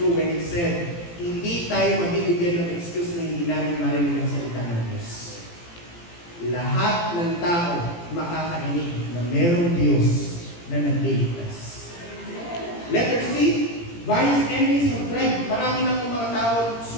when it said, hindi tayo mabibigyan ng excuse na hindi namin marinig ang salita ng Diyos. Lahat ng tao makakarinig na merong Diyos na nagliligtas. Letter C, various enemies have tried. Marami na pong mga tao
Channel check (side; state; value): right; late; 17 ms